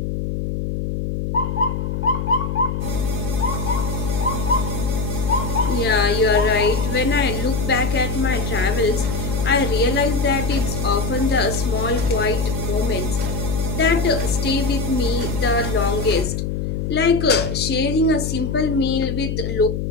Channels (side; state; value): left; noise; hum, 2 dB below the sound